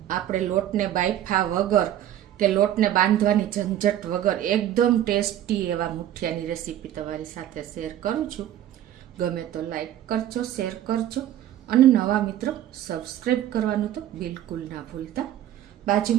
આપણે લોટને બાફા વગર કે લોટને બાંધવાની ઝંઝટ વગર એકદમ ટેસ્ટી એવા મુઠિયાની રેસીપી તમારી સાથે શેર કરું છું. ગમે તો લાઈક કરજો, શેર કરજો અને નવા મિત્રો સબસ્ક્રાઈબ કરવાનું તો બિલકુલ ના ભૂલતા.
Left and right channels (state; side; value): quieter; left; 11.9 dB